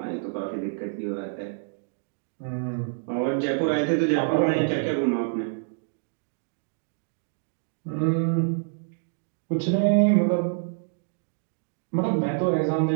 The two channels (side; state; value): left; silent; digital silence